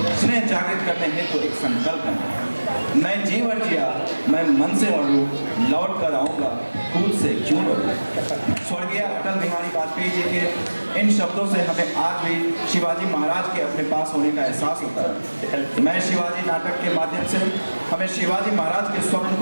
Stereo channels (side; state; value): both; inverted; correlation -1.00